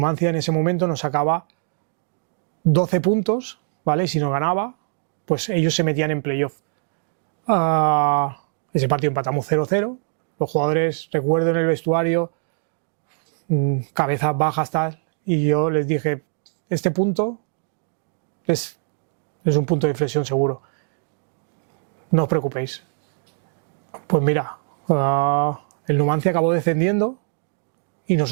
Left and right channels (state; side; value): silent; left; digital silence